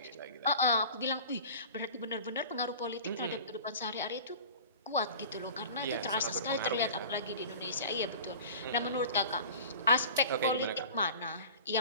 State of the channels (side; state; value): both; inverted; correlation -0.39